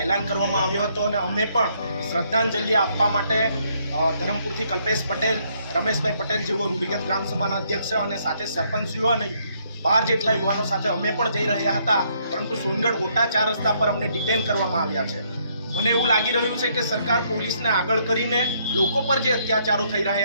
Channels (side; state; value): both; inverted; correlation -0.70